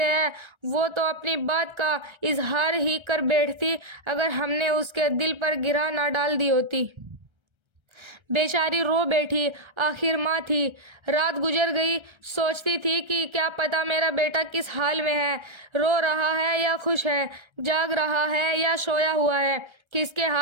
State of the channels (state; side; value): late; left; 1.3 ms